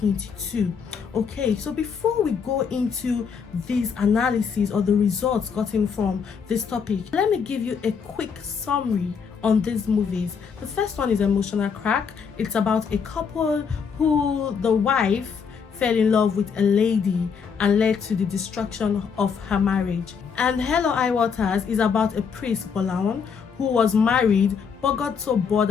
Okay, so before we go into these analyses or the results gotten from this topic, let me give you a quick summary on these movies. The first one is Emotional Crack. It's about a couple who the wife fell in love with a lady and led to the destruction of her marriage. And Hell or High Waters is about a priest, Bolawan, who was married but got so bored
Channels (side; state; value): right; quieter; 6.3 dB